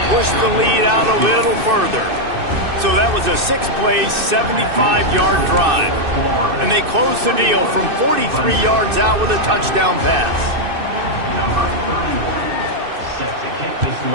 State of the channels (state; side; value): late; left; 2.6 ms